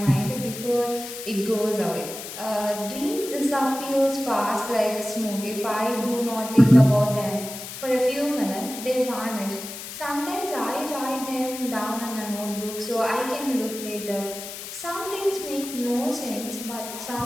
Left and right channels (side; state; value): left; noise; hiss, 10 dB below the sound